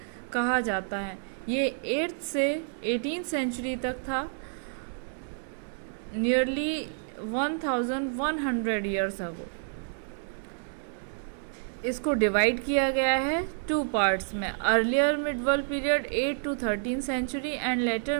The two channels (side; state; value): left; silent; digital silence